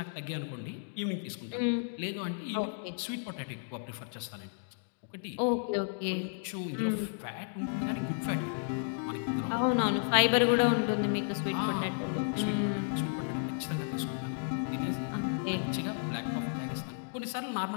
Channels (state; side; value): silent; right; digital silence